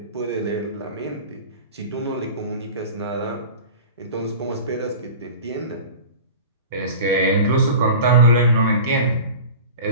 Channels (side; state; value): both; inverted; correlation -0.36